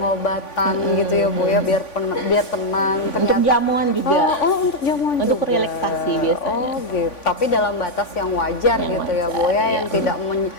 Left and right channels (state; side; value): late; right; 3.5 ms